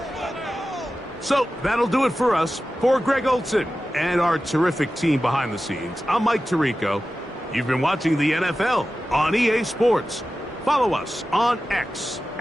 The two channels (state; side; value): normal; both; correlation 0.94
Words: So that'll do it for us. For Greg Olson and our terrific team behind the scenes, I'm Mike Tirico. You've been watching the NFL on EA Sports. Follow us on X